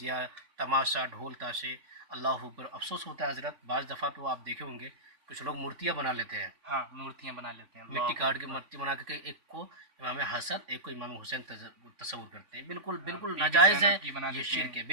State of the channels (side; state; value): left; late; 3.5 ms